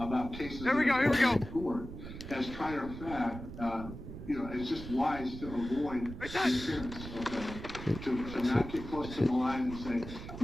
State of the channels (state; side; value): noise; right; rumble, 11 dB below the sound